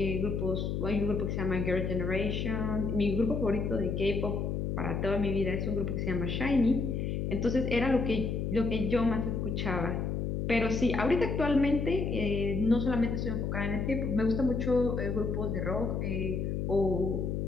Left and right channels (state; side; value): noise; left; hum, 1 dB below the sound